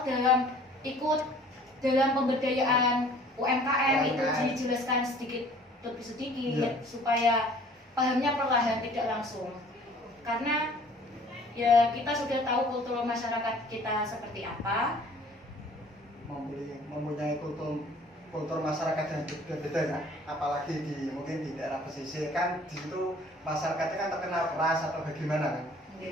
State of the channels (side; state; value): both; normal; correlation 0.52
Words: ikut dalam pemberdayaan UMKM itu dijelaskan sedikit demi sedikit, Ya. supaya pahamnya perlahan tidak langsung. Karena ya kita sudah tahu kultur masyarakat kita seperti apa. Mempunyai kultur masyarakat yang berbeda ya, apalagi mungkin di daerah pesisir kan, di situ masyarakatnya kan terkenal keras atau bagaimana kan?